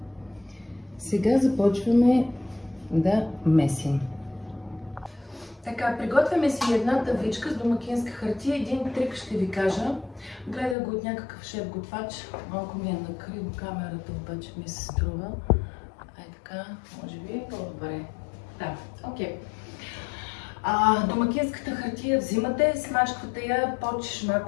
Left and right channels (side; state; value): right; drops out; at 10.8 s